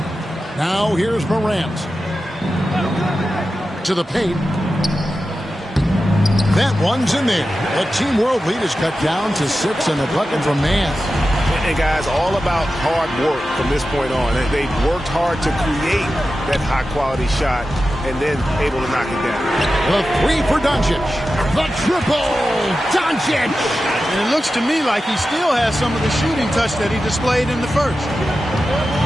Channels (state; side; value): normal; both; correlation 0.92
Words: Now here's Morant. To the paint. That one's in there. The Team World lead is cut down to 6 and a bucket from Mann. And guys, all about hard work from this point on. They've worked hard to create that high-quality shot and then able to knock it down. The 3 for Doncic. The triple. Doncic. And it looks to me like he still has some of the shooting touch that he displayed in the first.